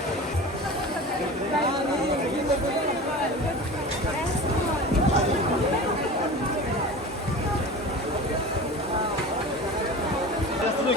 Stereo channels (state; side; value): normal; both; correlation 0.34